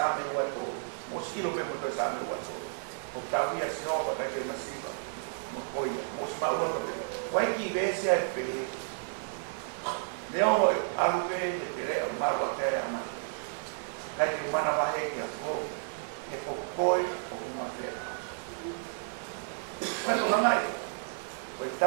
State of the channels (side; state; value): left; silent; digital silence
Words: wato. Mo silo pe mo to same wato. O tawia si ova ka te masiva. Mo koia, mo sma ulo pe. Wai ki vese ai pe. Leo alu pe he te re marwa ka ya ma. Ka te mana va he ki a kovi. He ko koe o kuma fe. Wai to ngai. Ko